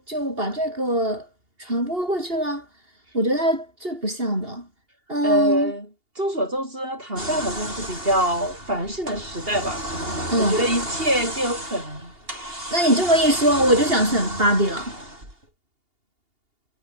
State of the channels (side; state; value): left; late; 2.8 ms